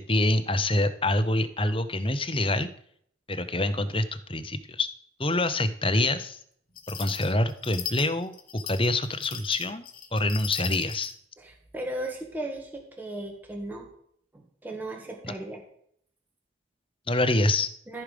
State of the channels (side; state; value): both; normal; correlation 0.58